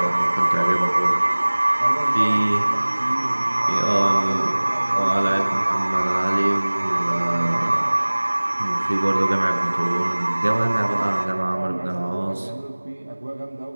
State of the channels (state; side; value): inverted; both; correlation -1.00